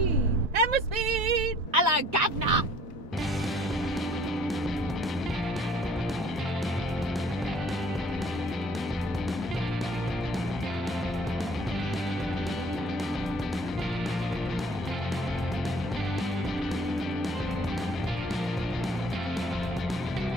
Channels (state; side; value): normal; both; correlation 0.55